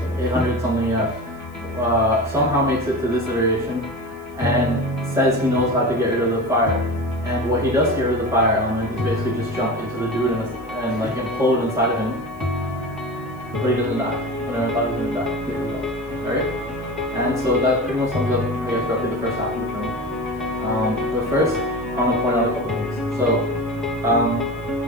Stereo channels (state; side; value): noise; left; hiss, 30 dB below the sound